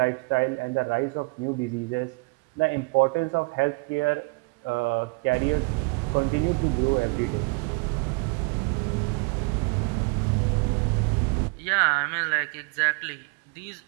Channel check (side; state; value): left; quieter; 30.6 dB